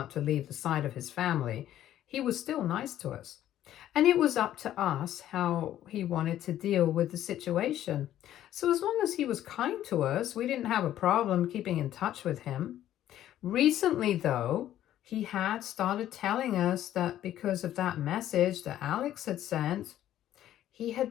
to leave the side of his family, he was still nice to us. And it was up to us how he wanted to deal with the situation. So as long as he was kind to us, we didn't have a problem keeping in touch with him. Recently, though, he had started telling us that because of that message that Alex had sent, he had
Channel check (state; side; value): quieter; right; 12.3 dB